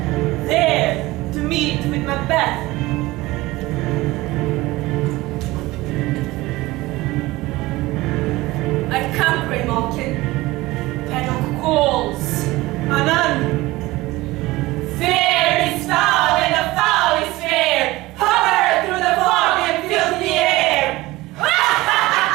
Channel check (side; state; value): left; quieter; 19.5 dB